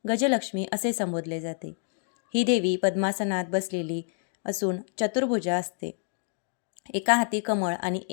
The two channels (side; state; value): right; silent; 55 dB below the other